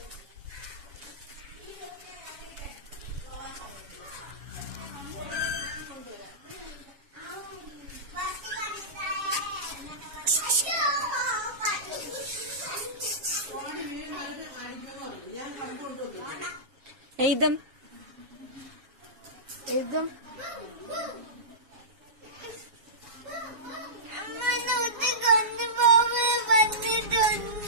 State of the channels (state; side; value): late; left; 7.2 ms